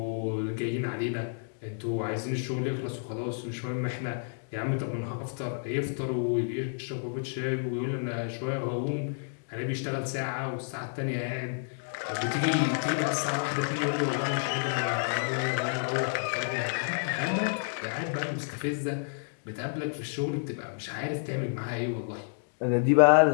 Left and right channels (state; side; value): silent; right; digital silence